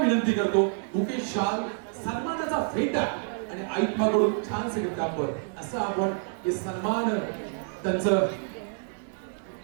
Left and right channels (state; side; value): silent; left; 58 dB below the other